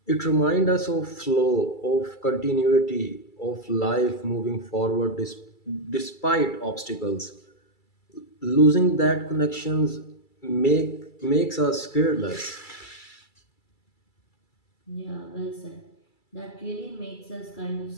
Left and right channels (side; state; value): right; late; 2.3 ms